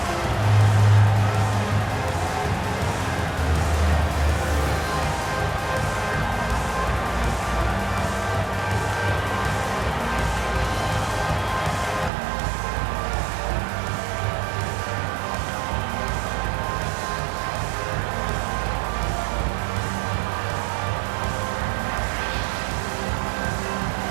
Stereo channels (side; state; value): left; drops out; at 12.1 s